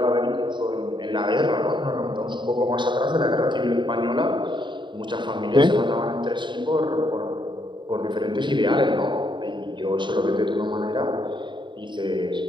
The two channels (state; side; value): late; left; 0.23 ms